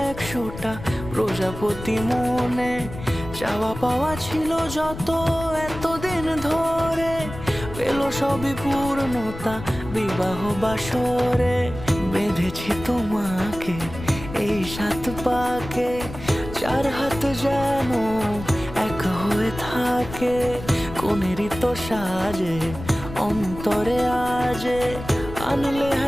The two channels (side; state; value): left; noise; rumble, 11 dB below the sound